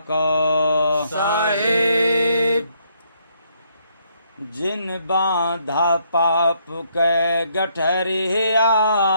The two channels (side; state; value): both; inverted; correlation -0.71